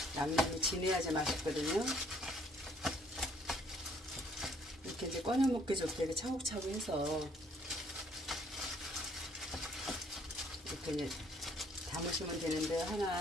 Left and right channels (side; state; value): both; normal; correlation 0.63